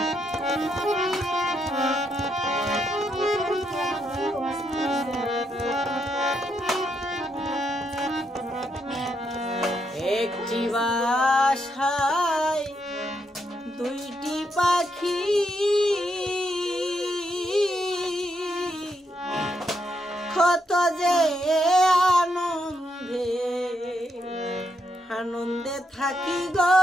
একটি বাসায় দুইটি পাখি কত যে আনন্দে আনন্দে থাকি গো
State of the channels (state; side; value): normal; both; correlation 0.79